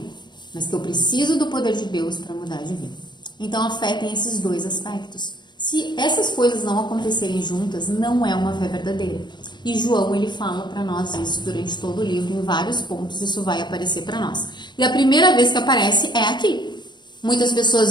mas que eu preciso do poder de Deus para mudar de vida. Então a fé tem esses dois aspectos. Se essas coisas não acontecerem juntas, não é uma fé verdadeira. E João, ele fala para nós isso durante todo o livro, em vários pontos isso vai aparecer para nós. E a primeira vez que aparece é aqui. Muitas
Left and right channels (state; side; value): late; right; 0.21 ms